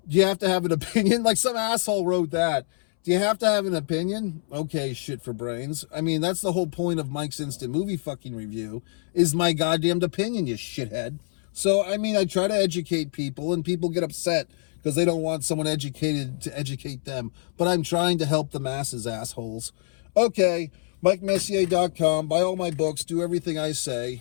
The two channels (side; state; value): right; silent; 61 dB below the other